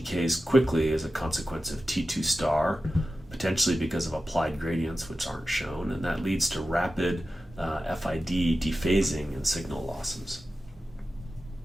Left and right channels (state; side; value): normal; both; correlation 0.92